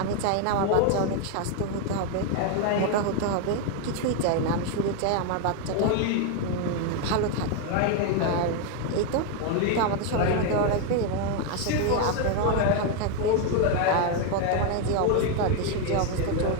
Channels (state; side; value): different; both; correlation 0.01